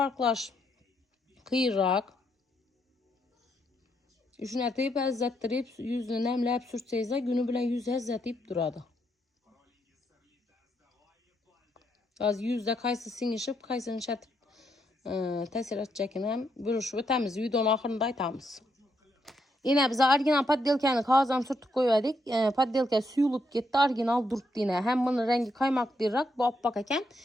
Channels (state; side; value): normal; both; correlation 0.78